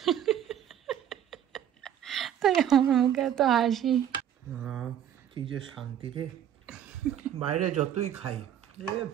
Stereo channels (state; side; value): quieter; left; 10.0 dB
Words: তাই আমার মুখে এত হাসি। কি যে শান্তি রে, বাইরে যতই খাই